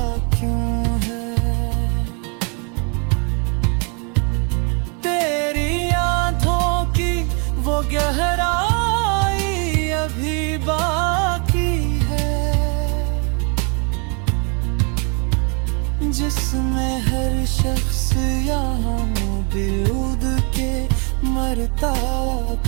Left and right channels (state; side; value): quieter; left; 35.6 dB